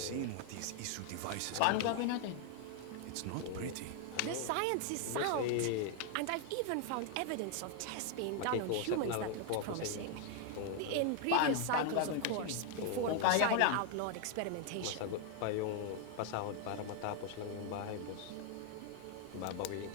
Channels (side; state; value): both; different; correlation 0.00